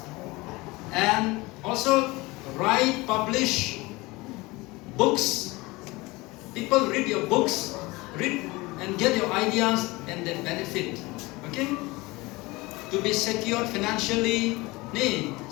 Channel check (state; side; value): quieter; right; 22.4 dB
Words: And also write, publish books. People read your books, read and get your ideas and then benefit, okay? To be secured financially. Ni,